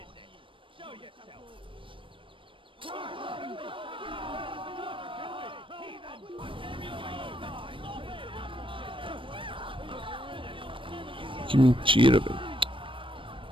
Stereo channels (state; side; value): late; left; 0.25 ms